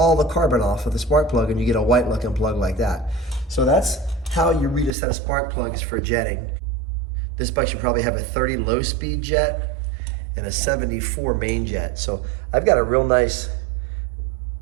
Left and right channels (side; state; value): left; drops out; at 4.9 s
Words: the carbon off of the spark plug, and you get a white looking plug like that. So that's how you read a set of spark plugs for jetting. This bike should probably have a 30 low speed jet and a 74 main jet. So I've got a real nice